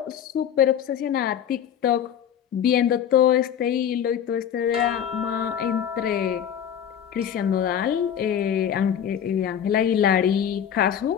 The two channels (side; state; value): right; quieter; 9.1 dB